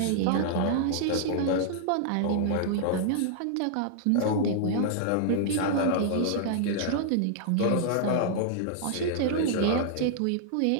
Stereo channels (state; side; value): different; both; correlation -0.01